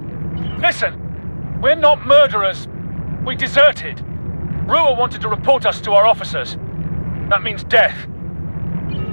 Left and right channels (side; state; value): both; inverted; correlation -1.00